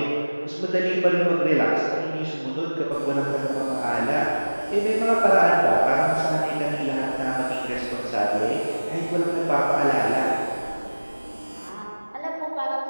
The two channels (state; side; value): inverted; both; correlation -1.00